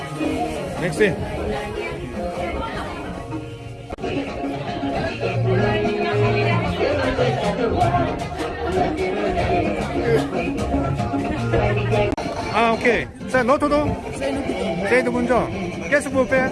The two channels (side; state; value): both; identical; correlation 1.00